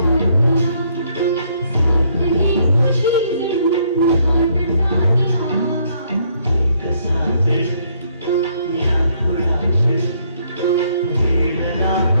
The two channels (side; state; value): both; inverted; correlation -0.68